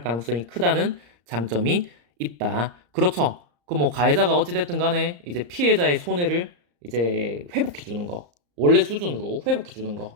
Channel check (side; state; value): left; late; 34 ms